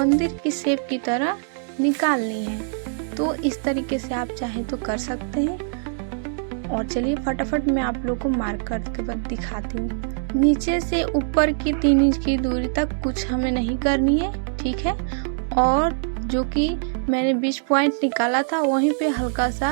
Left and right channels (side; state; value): left; silent; digital silence